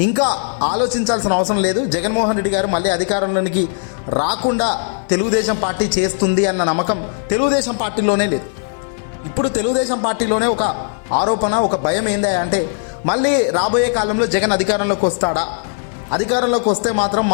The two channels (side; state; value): right; silent; digital silence